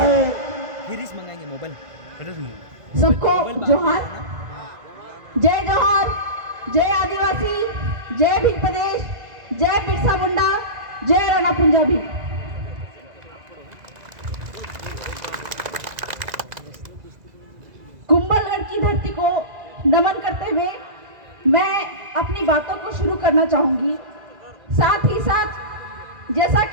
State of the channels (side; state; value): left; late; 2.0 ms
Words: गिरीश मंगाएंगे मोबाइल। सबको जोहार, जय जोहार, जय आदिवासी, जय भील प्रदेश, जय बिरसा मुंडा, जय राणा पंजाबी। कुंभलगढ़ की धरती को नमन करते हुए मैं अपनी बातों को शुरू करना चाहूंगी। साथ ही साथ जैसा